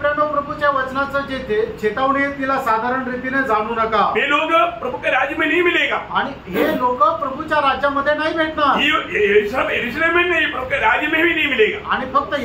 प्रभूच्या वचनाचं जे चेतावणी आहे तिला साधारण रीतीने जाणू नका। ये लोग प्रभु के राज्य में नहीं मिलेगा। आणि हे लोक प्रभूच्या राज्यामध्ये नाही भेटणार। ये सब यरूशलेम में नहीं, प्रभु के राज्य में भी नहीं मिलेगा। आणि फक्त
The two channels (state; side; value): identical; both; correlation 1.00